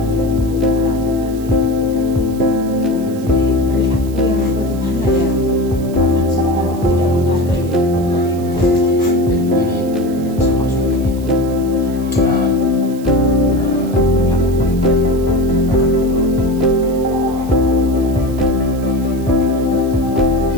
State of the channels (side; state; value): right; noise; hiss, 21 dB below the sound